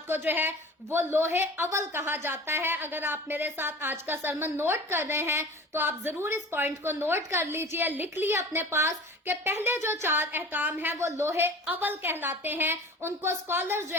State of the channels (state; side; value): normal; both; correlation 0.40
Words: को जो है वो लोहे अव्वल कहा जाता है। अगर आप मेरे साथ आज का सरमन नोट कर रहे हैं तो आप जरूर इस पॉइंट को नोट कर लीजिए, लिख लिए अपने पास कि पहले जो 4 अहकाम हैं वो लोहे अव्वल कहलाते हैं, उनको स्कॉलर्स जो